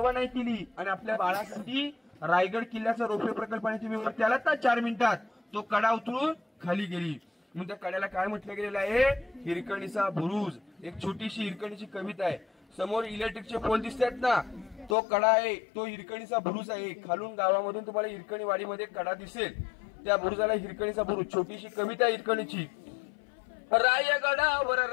नाही केली आणि आपल्या बाळासाठी रायगड किल्ल्याचा रोपवे प्रकल्पाने तुम्ही वरती आलात ना 4 मिनिटात, तो कडा उतरून खाली गेली. म्हणून त्या कड्याला काय म्हटलं गेलेलं आहे? हिरकणीचा बुरुज. एक छोटीशी हिरकणीची कविता आहे. समोर इलेक्ट्रिकचे पोल दिसतात ना, तो कडा आहे, तो हिरकणीचा बुरुज आहे. खालून गावामधून तुम्हाला हिरकणी वाडीमध्ये कडा दिसेल, त्या बुरुजाला हिरकणीचा बुरुज. छोटीशी कविता हिरकणीची. रायगडावर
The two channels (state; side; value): drops out; right; at 15.0 s